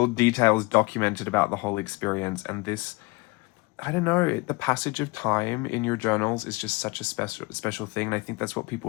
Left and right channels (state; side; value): quieter; right; 25.3 dB